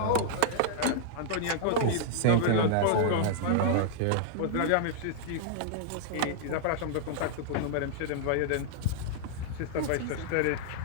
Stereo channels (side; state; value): both; different; correlation -0.01